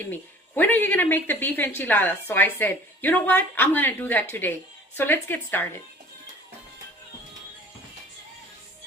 me, when are you gonna make the beef enchiladas? So I said, you know what, I'm gonna do that today. So let's get started.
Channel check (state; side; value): normal; both; correlation 0.48